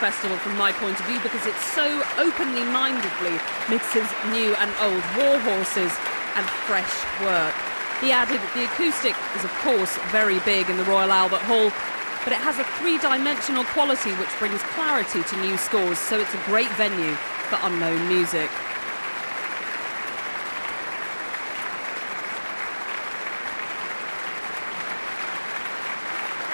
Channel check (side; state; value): both; inverted; correlation -1.00